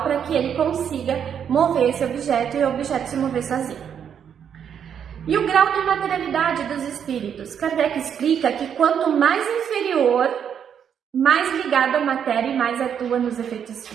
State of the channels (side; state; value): left; quieter; 8.2 dB